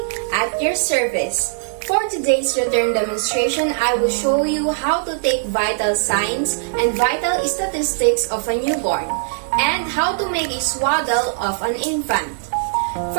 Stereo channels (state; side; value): silent; left; digital silence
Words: at your service. For today's return demonstration, I will show you how to take vital signs and vital statistics of a newborn and how to make a swaddle of an infant.